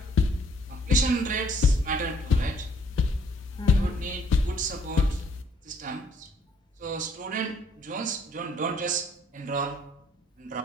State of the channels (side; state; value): both; normal; correlation 0.63